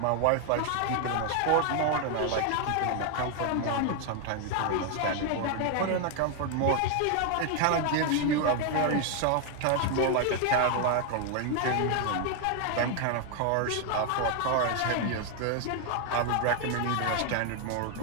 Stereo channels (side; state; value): both; different; correlation 0.01